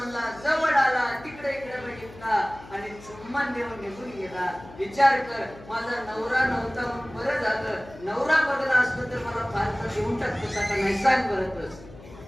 जवळ आला, तिकडे इकडे बघितला आणि चुम्मान देऊन निघून गेला. विचार कर, माझा नवरा नव्हता म्हणून बरं झालं. नवरा बदला असतो तर मला फारसा देऊन टाकतो का नाही सांग बरंच.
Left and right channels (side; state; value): left; noise; hum, 18 dB below the sound